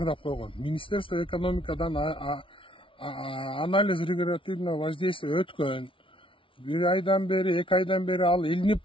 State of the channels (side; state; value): right; late; 0.25 ms